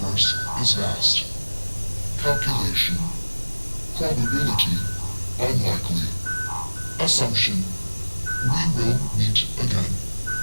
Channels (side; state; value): both; inverted; correlation -1.00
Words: is vast. Calculation. Probability. Unlikely. Assumption. We will meet again.